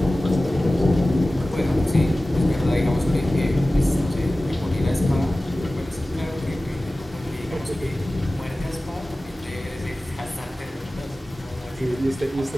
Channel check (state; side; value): normal; both; correlation 0.97